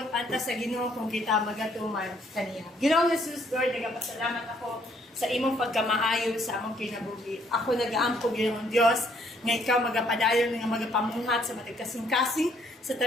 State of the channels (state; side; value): normal; both; correlation 0.67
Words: anta sa Ginoo kung kita magatuman kaniya. Ginoong Jesus, Lord, nagapasalamat ako sa imong pagkamaayo sa among kinabuhi. Ako nagaampo Ginoong Dios nga ikaw magapadayon nga magapamuhat sa matag kasing-kasing sa